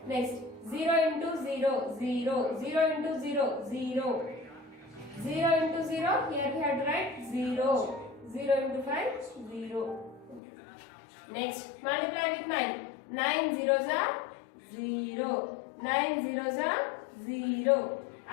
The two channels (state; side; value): drops out; right; at 10.4 s